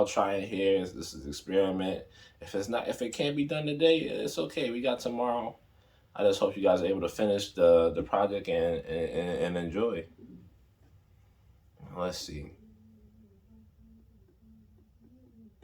trying here. This is an experiment. If it can't be done today, it's okay. We got tomorrow. I just hope you guys are able to finish the project and enjoy. Let's see.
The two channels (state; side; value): identical; both; correlation 1.00